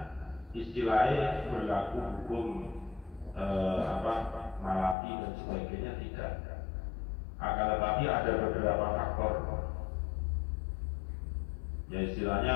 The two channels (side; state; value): right; drops out; at 5.0 s